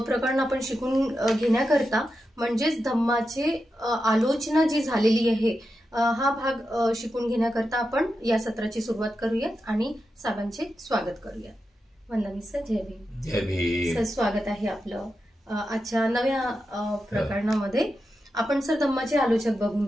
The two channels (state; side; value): normal; both; correlation 0.89